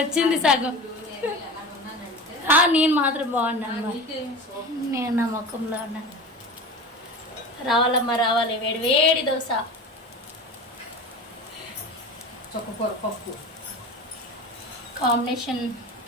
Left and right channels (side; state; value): both; normal; correlation 0.32